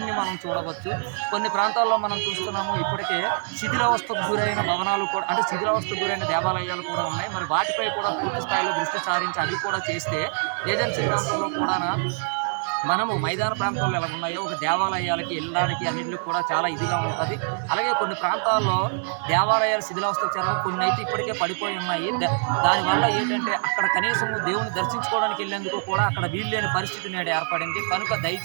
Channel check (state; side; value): silent; left; 62 dB below the other